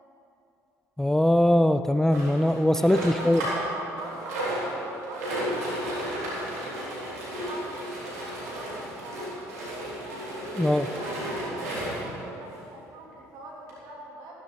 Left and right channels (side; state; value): both; normal; correlation 0.85